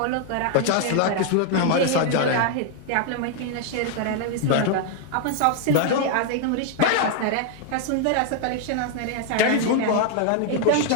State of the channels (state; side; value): different; both; correlation 0.00